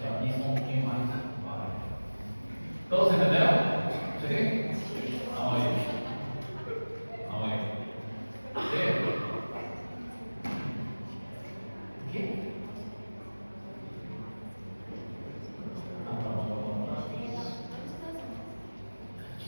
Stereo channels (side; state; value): both; inverted; correlation -1.00